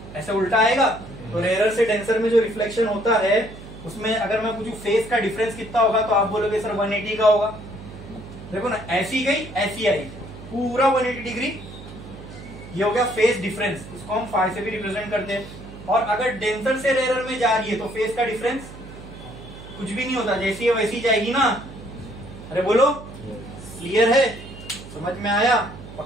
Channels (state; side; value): noise; right; hum, 15 dB below the sound